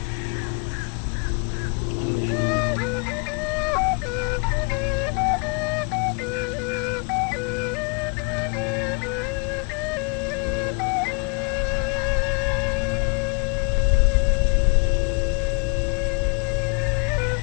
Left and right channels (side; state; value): right; quieter; 36.2 dB